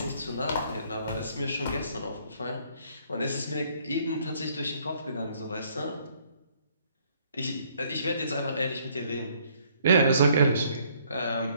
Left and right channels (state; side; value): inverted; both; correlation -0.64